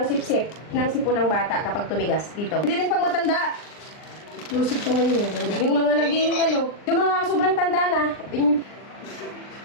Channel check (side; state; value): right; late; 39 ms